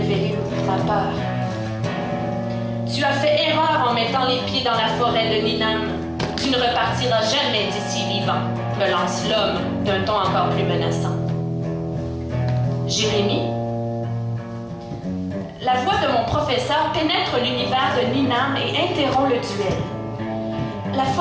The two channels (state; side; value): identical; both; correlation 1.00